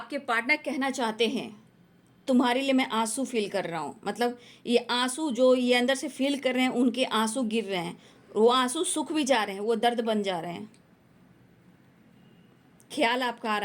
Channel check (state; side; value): identical; both; correlation 1.00